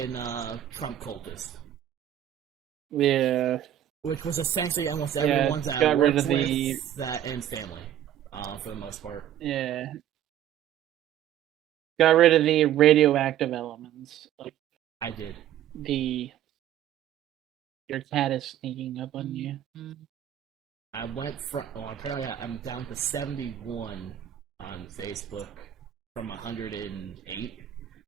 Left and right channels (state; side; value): quieter; left; 11.2 dB